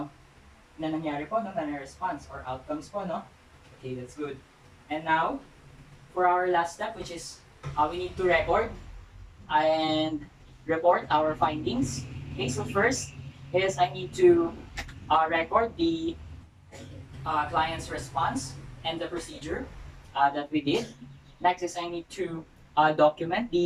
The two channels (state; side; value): identical; both; correlation 1.00